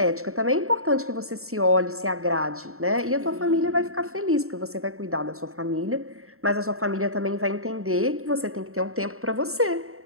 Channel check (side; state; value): left; late; 0.63 ms